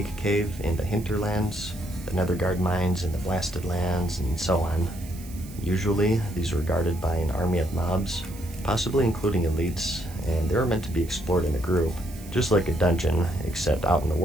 cave in the hinterlands, the netherguard mines in the blasted lands, and so on. Usually, these were guarded by an army of mobs, possibly including elites, and they were meant to be explored in a group, just like a dungeon, except out in the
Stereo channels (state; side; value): noise; right; hiss, 19 dB below the sound